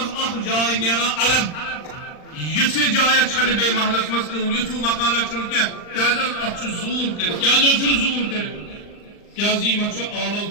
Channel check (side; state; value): right; late; 39 ms